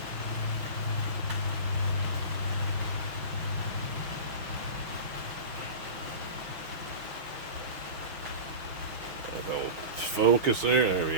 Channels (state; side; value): late; left; 6.1 ms